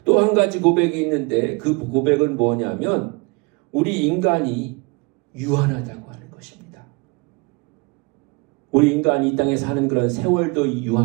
또 한 가지 고백이 있는데 그 고백은 뭐냐면 우리 인간이 유한하다고 하는 것입니다. 우리 인간이 이 땅에 사는 그런 세월도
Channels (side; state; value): left; quieter; 28.8 dB